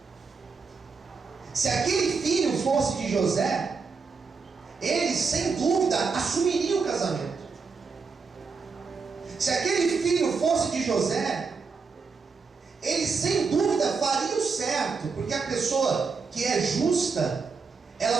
Se aquele filho fosse de José, ele sem dúvida assumiria o casamento. Se aquele filho fosse de José, ele sem dúvida faria o certo, porque a pessoa que é justa,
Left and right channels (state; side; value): quieter; left; 5.0 dB